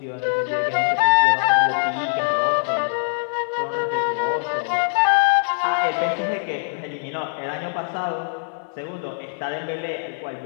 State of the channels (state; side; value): silent; right; digital silence